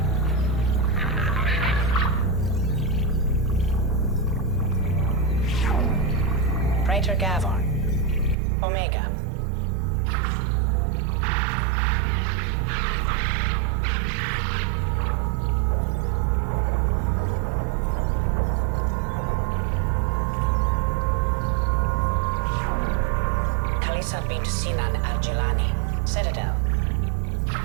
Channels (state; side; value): drops out; left; at 8.3 s